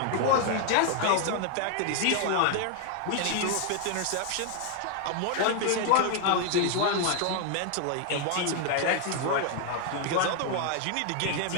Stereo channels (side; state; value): both; different; correlation 0.00